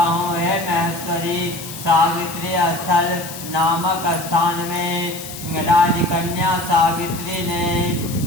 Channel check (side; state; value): left; noise; hiss, 11 dB below the sound